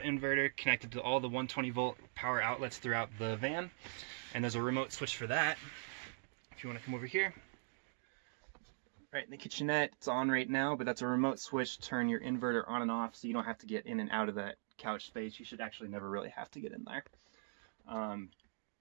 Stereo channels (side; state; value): left; silent; digital silence